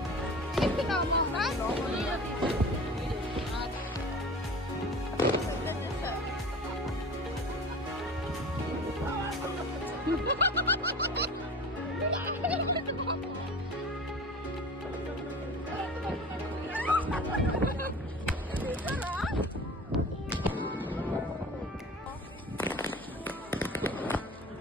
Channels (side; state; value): both; normal; correlation 0.38